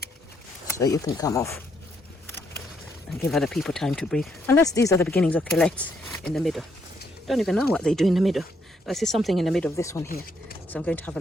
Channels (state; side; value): normal; both; correlation 0.74